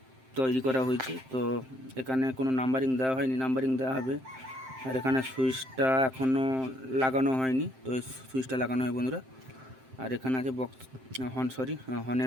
তৈরি করা হয়েছে। তো এখানে কোনো নাম্বারিং দেওয়া হয়নি, নাম্বারিং দেওয়া হবে। আর এখানে সুইচটা এখনও লাগানো হয়নি, তো এই সুইচটা লাগানো হয় বন্ধুরা। আর এখানে আছে বক্স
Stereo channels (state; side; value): late; left; 7.7 ms